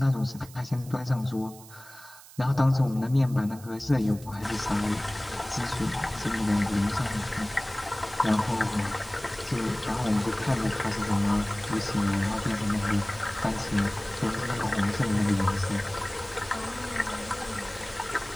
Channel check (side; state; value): right; noise; hiss, 19 dB below the sound